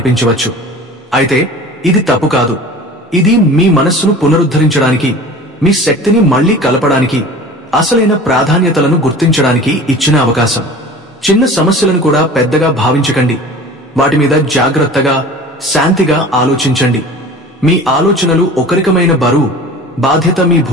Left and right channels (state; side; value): normal; both; correlation 0.40